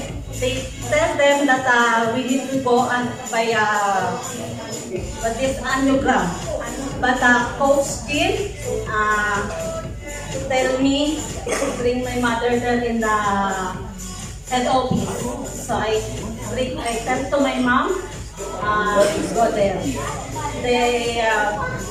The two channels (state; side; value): identical; both; correlation 1.00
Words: tell them that we need to go and buy this angiogram. But Coach Kim tell me to bring my mother there in the head office. So I tell to my mom, go there. They